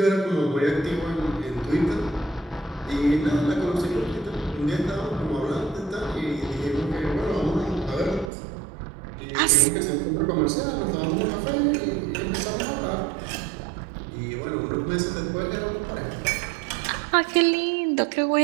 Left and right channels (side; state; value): left; drops out; at 8.3 s